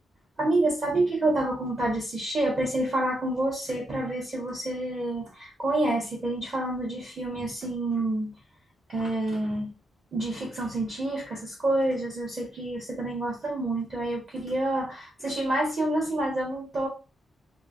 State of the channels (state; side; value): normal; both; correlation 0.80